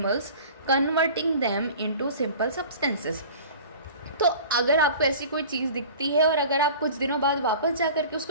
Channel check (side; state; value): both; inverted; correlation -0.41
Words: converting them into simple substances. तो अगर आपको ऐसी कोई चीज़ दिखती है और अगर आप कुछ दिनों बाद वापस जा कर के